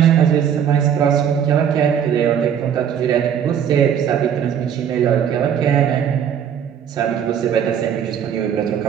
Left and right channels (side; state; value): left; quieter; 8.6 dB